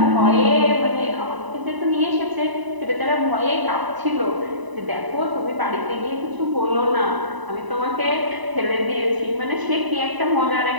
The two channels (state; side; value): late; left; 1.0 ms